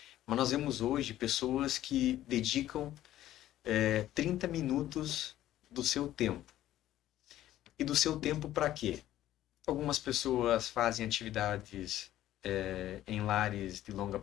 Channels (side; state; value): right; quieter; 13.4 dB